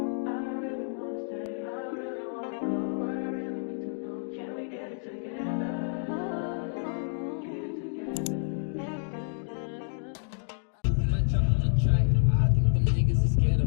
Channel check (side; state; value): right; silent; digital silence